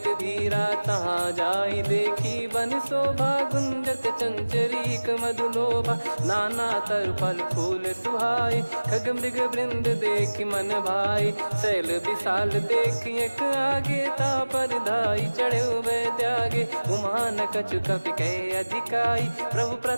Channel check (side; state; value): both; inverted; correlation -1.00